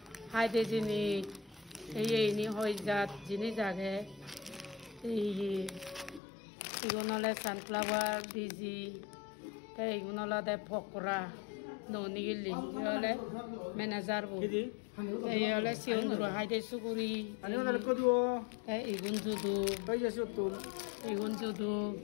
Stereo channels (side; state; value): right; drops out; at 6.2 s